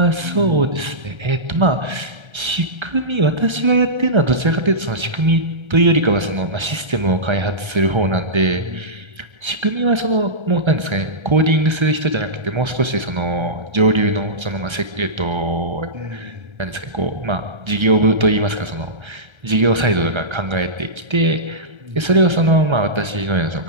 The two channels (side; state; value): left; late; 1.3 ms